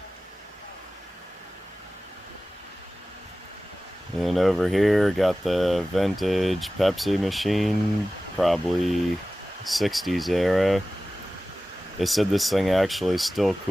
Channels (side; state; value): both; normal; correlation 0.96